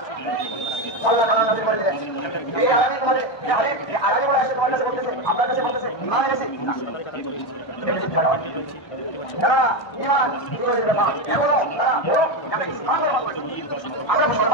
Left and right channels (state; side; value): late; right; 1.3 ms